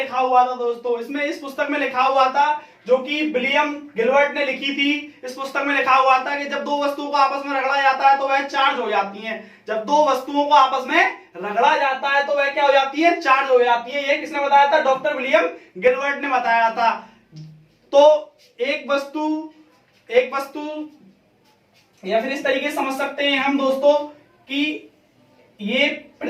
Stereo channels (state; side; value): identical; both; correlation 1.00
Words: हुआ था दोस्तों, इसमें इस पुस्तक में लिखा हुआ था जो कि विलियम गिलबर्ट ने लिखी थी। इस पुस्तक में लिखा हुआ था कि जब दो वस्तुओं को आपस में रगड़ा जाता है तो वह चार्ज हो जाती हैं, जब दो वस्तुओं को आपस में रगड़ा जाता है तो वह क्या हो जाती है, चार्ज हो जाती है। ये किसने बताया था, डॉक्टर विलियम गिलबर्ट ने बताया था। तो एक वस्तु या फिर इस तरीके से समझ सकते हैं हम दोस्तों कि ये